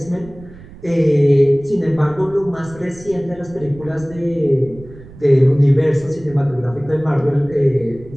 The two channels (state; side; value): noise; right; rumble, 19 dB below the sound